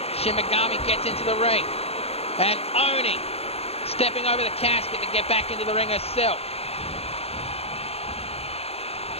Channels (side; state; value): right; late; 0.29 ms